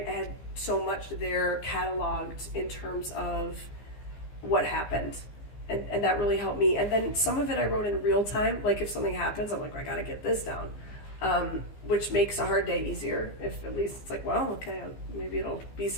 had so much there cataloged in terms of what happened, and that really helped me. And then some of it I wrote in real time, like if something happens, I'm like, I gotta get this down, which makes a hard day easier. If at least it's like, well, okay, maybe it'll be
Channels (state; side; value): late; right; 15 ms